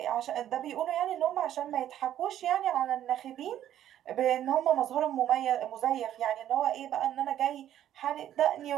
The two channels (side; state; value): left; quieter; 11.5 dB